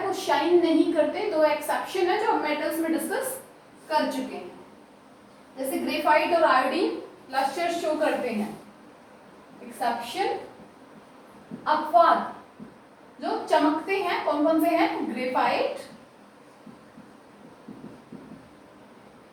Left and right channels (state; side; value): identical; both; correlation 1.00